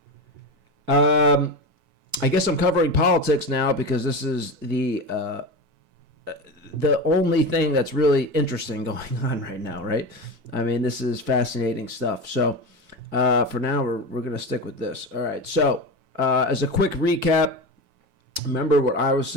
I guess I'm covering politics now because this is the only thing that's really interesting going on right now, right? I mean, this is fascinating stuff. So for now, we're going to stick with this. All right, so as a quick recap, remember what I was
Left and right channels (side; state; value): left; late; 4.6 ms